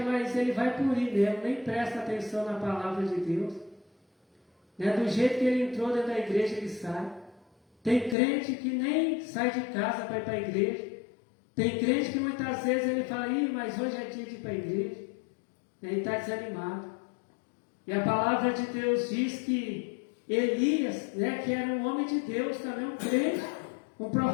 ele vai por ir mesmo, nem presta atenção na palavra de Deus, né? Do jeito que ele entrou dentro da igreja, ele sai. Tem crente que nem sai de casa para ir para a igreja. Tem crente que muitas vezes ele fala, mas hoje é dia de ir para a igreja. Ele está desanimado. E a palavra de Deus diz que Elias, né, que era um homem de Deus, também um crente, Um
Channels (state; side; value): drops out; right; at 8.2 s